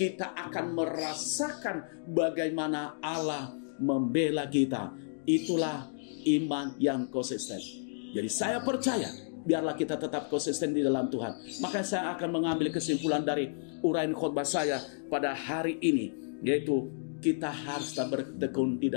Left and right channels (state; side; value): silent; right; digital silence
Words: akan merasakan bagaimana Allah membela kita. Itulah iman yang konsisten. Jadi saya percaya, biarlah kita tetap konsisten di dalam Tuhan. Maka saya akan mengambil kesimpulan dari uraian khotbah saya pada hari ini, yaitu kita harus bertekun di